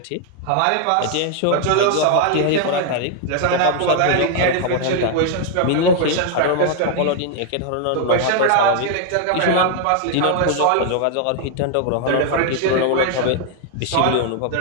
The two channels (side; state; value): both; different; correlation 0.00